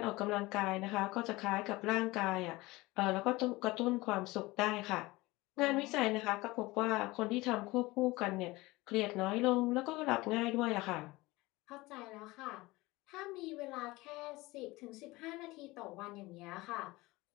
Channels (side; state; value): right; quieter; 21.0 dB